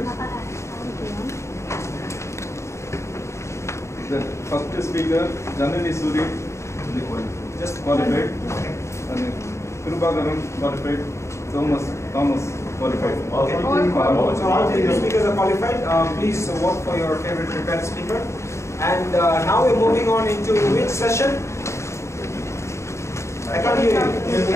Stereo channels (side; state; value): right; late; 0.14 ms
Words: The first speaker, Janani Suri, just qualified. And Kirubagaran qualified. Thomas qualified. Okay. So all the speakers are qualified. Please vote for your favorite prepared speaker. And now we're moving on into which session? I can't hear